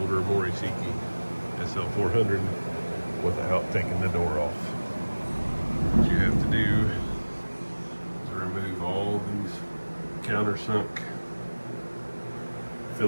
Mori Seiki SL-400 without taking the door off. What you have to do is remove all these countersunk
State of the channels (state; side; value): inverted; both; correlation -1.00